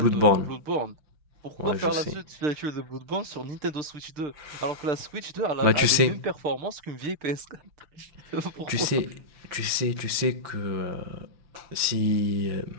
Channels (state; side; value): late; left; 6.0 ms